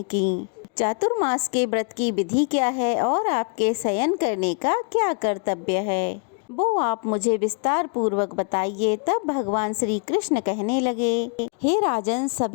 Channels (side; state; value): right; quieter; 39.7 dB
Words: की। चातुर्मास के व्रत की विधि क्या है और आपके शयन करने का क्या कर्तव्य है, वो आप मुझे विस्तार पूर्वक बताइए। तब भगवान श्री कृष्ण कहने लगे, हे राजन,